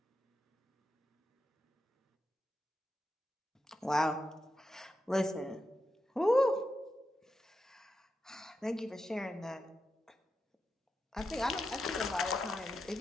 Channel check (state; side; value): normal; both; correlation 0.88